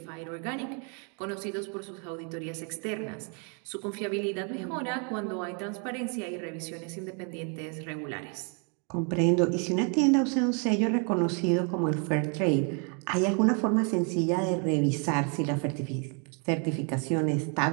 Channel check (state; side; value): quieter; left; 37.9 dB